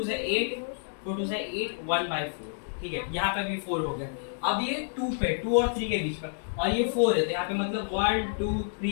से 8 4 2 से 8 1/4। ठीक है, यहाँ पे भी 4 हो गया। अब ये 2 पे 2 और 3 के बीच में, और ये 4 है, तो यहाँ पे मतलब 1 2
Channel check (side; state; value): right; silent; digital silence